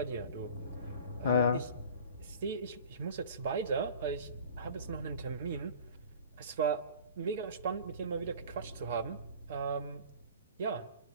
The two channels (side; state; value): both; inverted; correlation -0.43